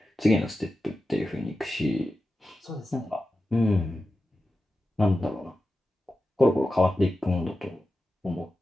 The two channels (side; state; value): both; normal; correlation 0.92